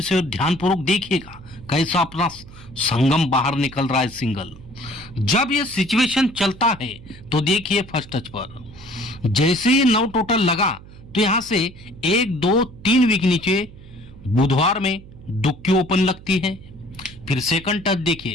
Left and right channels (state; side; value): noise; right; hum, 19 dB below the sound